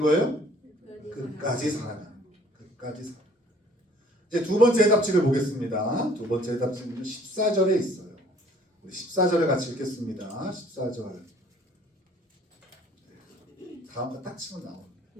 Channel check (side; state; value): both; normal; correlation 0.56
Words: 끝까지 사랑하는 거예요. 끝까지 사랑. 이제 두 번째 해답지를 보겠습니다. 두 번째 해답지는 14절에 있어요. 우리 14절을 같이 읽겠습니다. 14절. 다음 거 딱 치면 나옵니다.